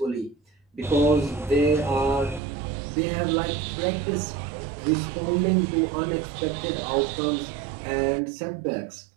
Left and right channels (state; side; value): drops out; left; at 2.4 s